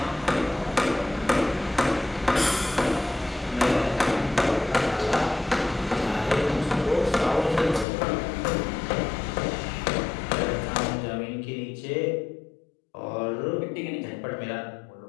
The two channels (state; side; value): drops out; right; at 7.9 s